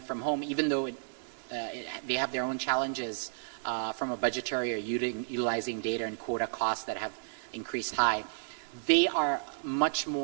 from home, even though they have their own challenges from a budgetary or utilizing data and quota costs that have increased high, they are much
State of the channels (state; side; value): silent; left; 56 dB below the other